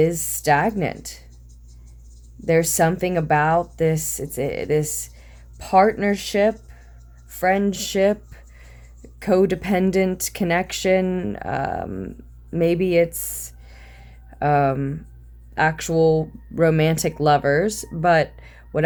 stagnant. There's something about this, this partnership, friendship, codependent connection. Maybe it's actual romantic lovers, but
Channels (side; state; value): both; identical; correlation 1.00